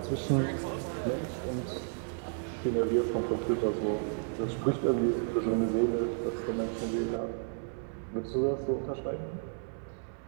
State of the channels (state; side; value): silent; left; 56 dB below the other